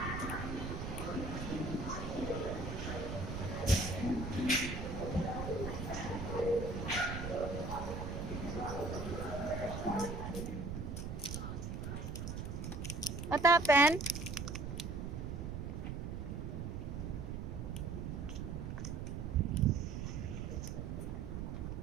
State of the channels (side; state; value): right; noise; rumble, 4 dB below the sound